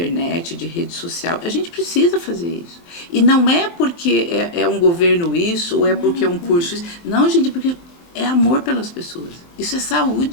de rede social, a gente precisa fazer isso. E não é porque é um governo isso, ou é porque é um curso isso. Não, gente, porque é amor pelas pessoas. Isso é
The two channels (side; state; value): right; late; 23 ms